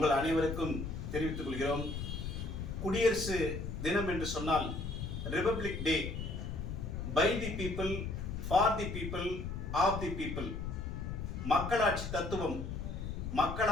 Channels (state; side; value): noise; left; rumble, 5 dB below the sound